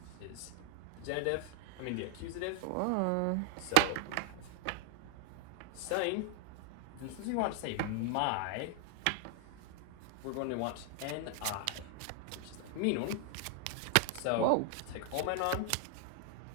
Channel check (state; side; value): different; both; correlation 0.00